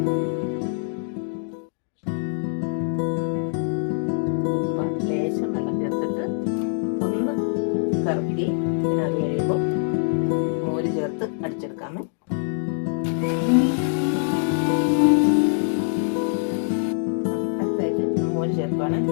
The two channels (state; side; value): silent; right; digital silence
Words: ലേശം വെള്ളം ചേർത്തിട്ട് ഒന്ന് കറക്കി പിന്നെ അത് കഴിയുമ്പോൾ മോര് ചേർത്ത് അടിച്ചെടുക്കാമേ. അടുത്തായിട്ട് മോര് ചേർക്കുകയാണ്.